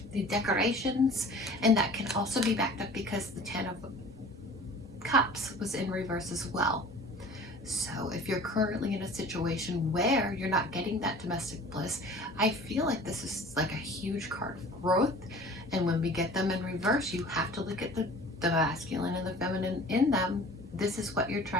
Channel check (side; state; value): both; normal; correlation 0.44